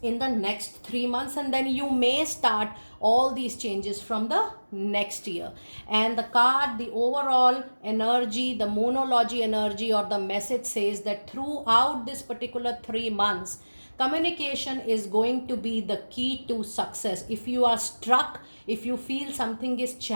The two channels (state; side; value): inverted; both; correlation -1.00